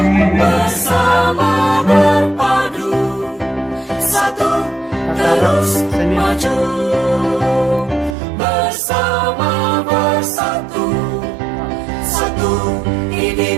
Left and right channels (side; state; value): left; drops out; at 8.2 s